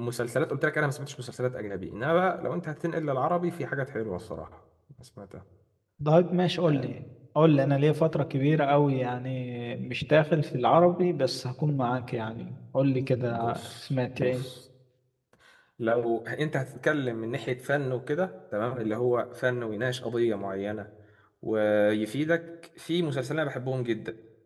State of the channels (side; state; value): both; identical; correlation 1.00